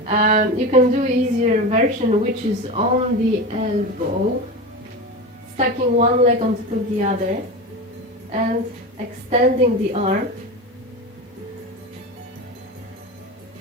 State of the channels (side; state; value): both; normal; correlation 0.24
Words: You can do easier version, which is on the elbow, stacking one leg on top of the other and extending the arm.